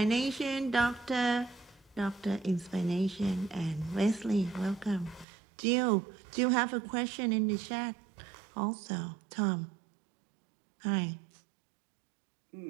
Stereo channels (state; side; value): drops out; left; at 5.2 s